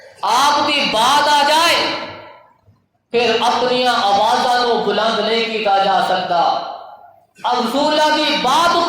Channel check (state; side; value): identical; both; correlation 1.00